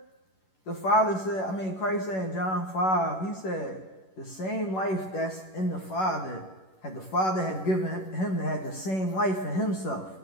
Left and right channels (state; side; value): late; right; 11 ms